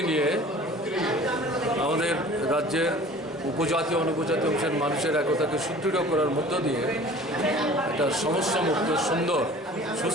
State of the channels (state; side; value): normal; both; correlation 0.45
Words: নিয়ে আমাদের রাজ্যের উপজাতি অনুপজাতি অংশের মানুষের একতাকে সুদৃঢ় করার মধ্য দিয়ে একটা সমস্যামুক্ত সুন্দর